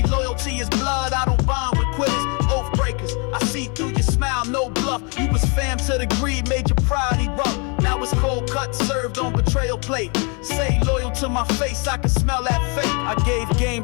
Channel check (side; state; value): right; quieter; 34.3 dB